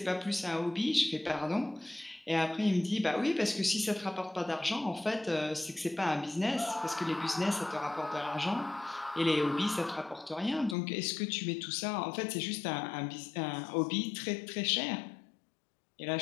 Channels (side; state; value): right; drops out; at 10.8 s